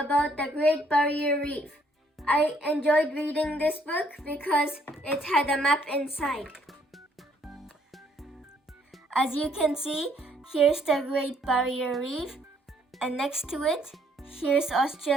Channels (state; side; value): normal; both; correlation 0.67